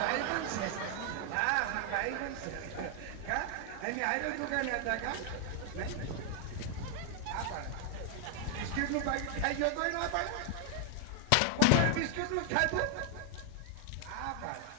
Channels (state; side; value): different; both; correlation 0.00